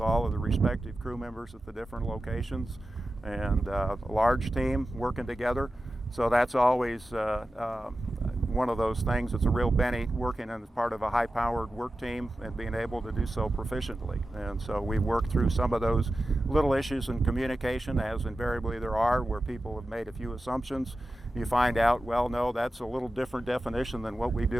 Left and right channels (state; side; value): normal; both; correlation 0.93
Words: all of the respective crew members at the different locations, and a large team working together. So that's always one of those things. It's a real benefit working as part of a high-powered work team and being able to do so proficiently. And so we've worked through some of those little issues in communication, as invariably there are, where people have made a few assumptions. You find out, well, no, that's a little different definition than what we